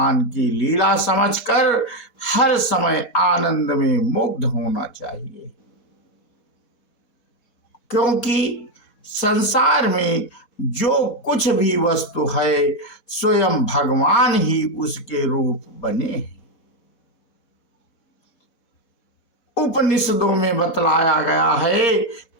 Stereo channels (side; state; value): right; late; 4.1 ms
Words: की लीला समझकर हर समय आनंद में मुग्ध होना चाहिए, क्योंकि संसार में जो कुछ भी वस्तु है स्वयं भगवान ही उसके रूप बने हैं। उपनिषदों में बतलाया गया है